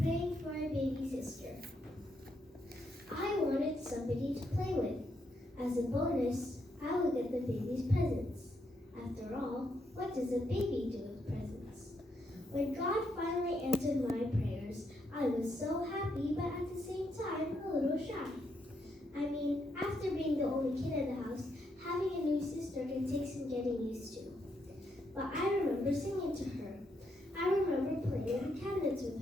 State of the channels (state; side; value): normal; both; correlation 0.78